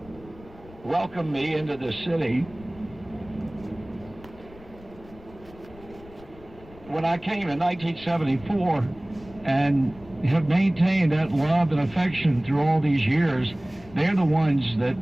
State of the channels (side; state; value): left; noise; rumble, 21 dB below the sound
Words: welcomed me into the city when I came in 1974 and have maintained that love and affection through all these years, they're the ones that